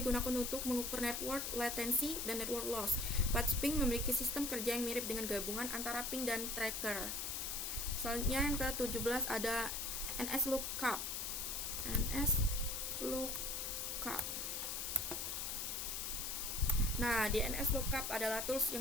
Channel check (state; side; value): noise; left; hiss, 2 dB below the sound